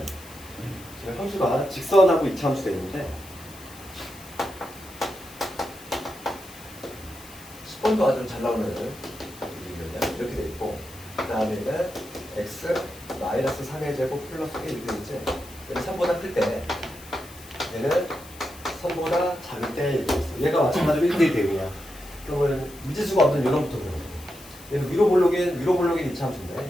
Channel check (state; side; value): noise; left; hiss, 19 dB below the sound